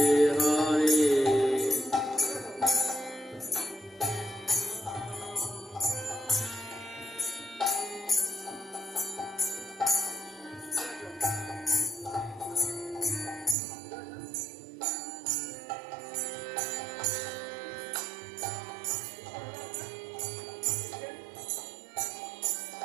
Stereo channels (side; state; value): left; drops out; at 13.6 s